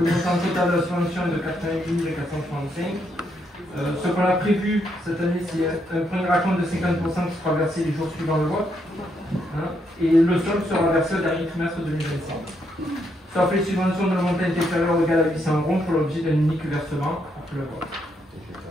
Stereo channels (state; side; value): normal; both; correlation 0.76